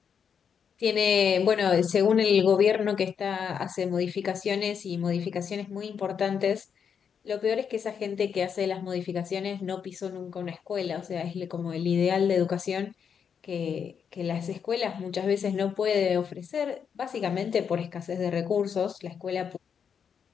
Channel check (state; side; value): quieter; right; 7.1 dB